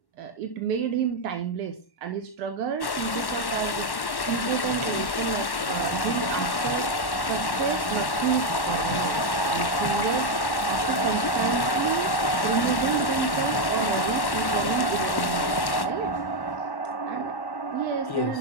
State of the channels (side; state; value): right; late; 1.1 ms